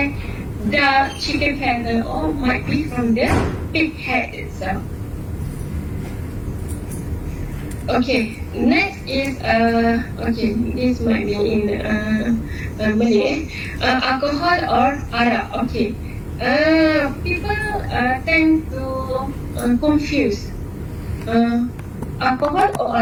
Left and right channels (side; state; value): both; identical; correlation 1.00